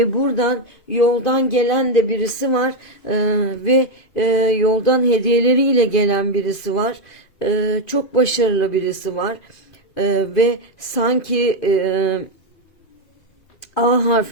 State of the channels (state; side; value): late; right; 2.5 ms